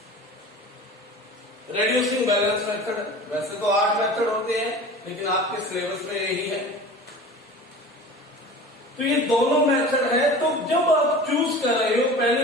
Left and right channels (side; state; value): both; normal; correlation 0.38